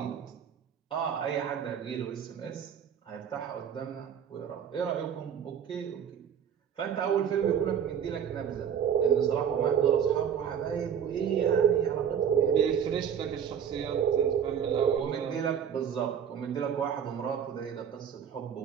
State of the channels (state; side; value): quieter; left; 8.2 dB